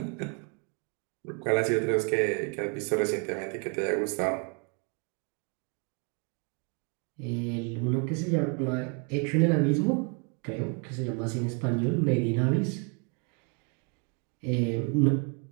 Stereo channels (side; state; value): left; quieter; 35.3 dB